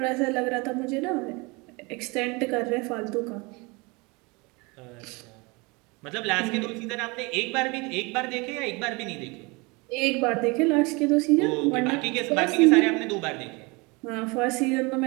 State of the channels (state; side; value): quieter; left; 27.1 dB